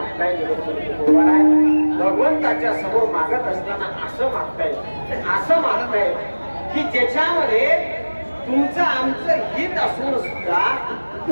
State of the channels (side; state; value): both; inverted; correlation -1.00